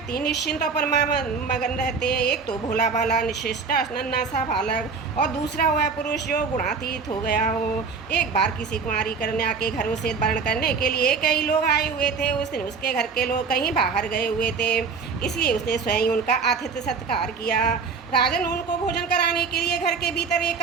निश्चिंत और मगन रहते हैं। एक तो भोला भाला निशिष्टा नन्हा सा बालक और दूसरा वह पुरुष जो गुणातीत हो गया हो। एक बार किसी कुंवारी कन्या के घरों से वर्ण करने के लिए कई लोग आए हुए थे। उस दिन उसके घर के लोग कहीं बाहर गए हुए थे, इसलिए उसने स्वयं उनका आतिथ्य सत्कार किया। राजन, उनको भोजन कराने के लिए घर के भीतर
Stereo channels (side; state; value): left; quieter; 5.2 dB